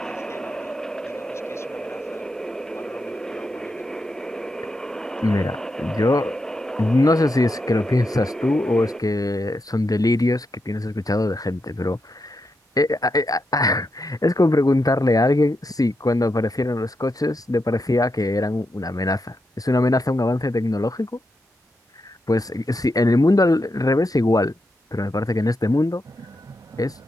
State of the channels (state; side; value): normal; both; correlation 0.85